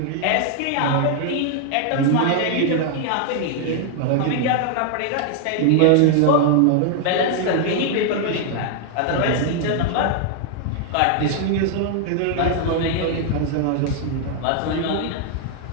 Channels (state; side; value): different; both; correlation 0.00